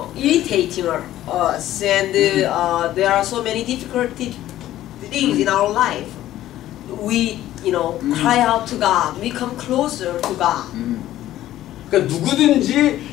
irritating us, and there are so many difficult things in our life, we cry out to God. We come closer to God. 그러니까 누구든지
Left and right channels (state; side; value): quieter; right; 13.7 dB